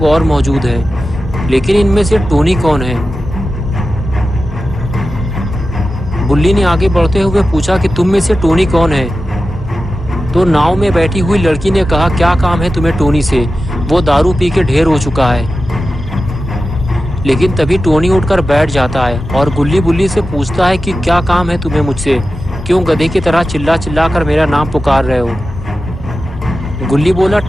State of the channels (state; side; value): normal; both; correlation 0.93